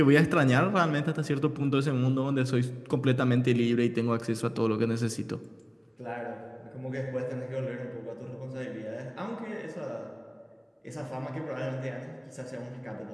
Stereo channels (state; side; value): identical; both; correlation 1.00